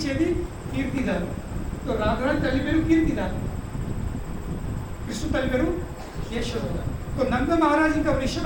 కీర్తిద. రాఘరాని తల్లి పేరు కీర్తిద, కృష్ణు తల్లి పేరు యశోద. నంద మహారాజు ఇంకా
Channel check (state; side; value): identical; both; correlation 1.00